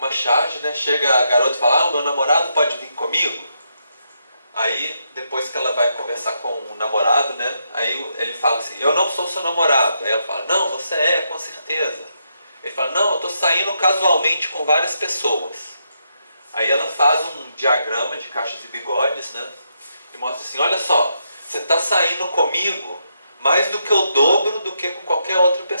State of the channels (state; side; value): inverted; both; correlation -0.80